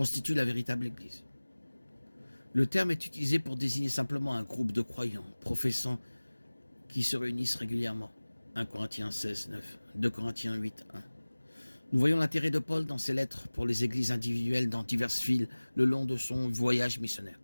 la véritable Église. Le terme est utilisé pour désigner simplement un groupe de croyants, professants, qui se réunissent régulièrement. 1 Corinthiens 16, 9, 2 Corinthiens 8, 1. Nous voyons l'intérêt de Paul dans ses lettres pour les églises individuelles dans diverses villes le long de son voyage missionnaire.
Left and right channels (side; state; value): both; inverted; correlation -1.00